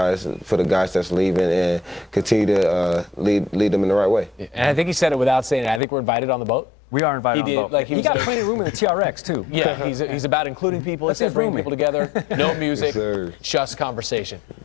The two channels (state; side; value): drops out; right; at 5.8 s